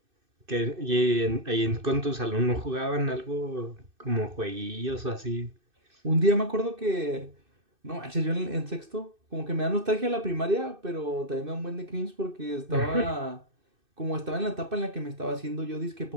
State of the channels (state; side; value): late; left; 2.6 ms